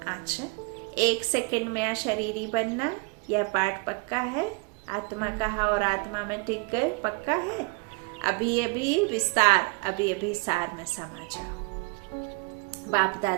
अच्छा, 1 सेकंड में या शरीरी बनना, यह पाठ पक्का है। आत्मा कहा और आत्मा में टिक गए, पक्का है। अभी अभी विस्तार, अभी अभी सार में समा जाओ। बाप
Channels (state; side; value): quieter; left; 30.9 dB